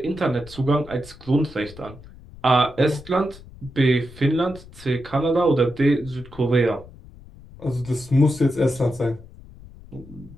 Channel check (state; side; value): noise; left; rumble, 19 dB below the sound